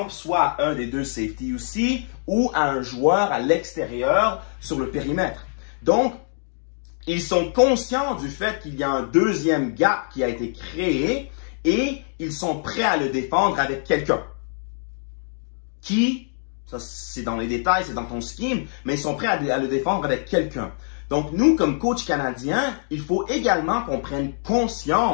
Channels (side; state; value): right; silent; digital silence